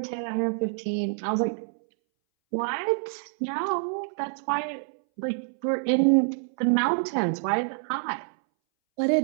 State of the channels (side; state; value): left; silent; 60 dB below the other